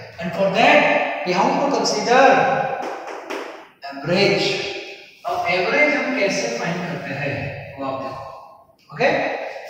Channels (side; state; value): both; identical; correlation 1.00